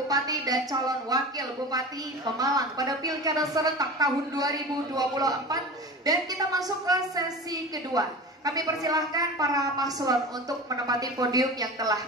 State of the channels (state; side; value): normal; both; correlation 0.33